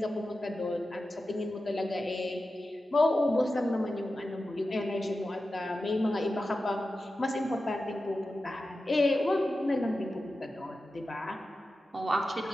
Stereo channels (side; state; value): both; normal; correlation 0.93